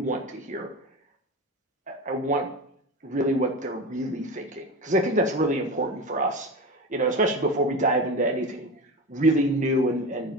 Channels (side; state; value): both; normal; correlation 0.25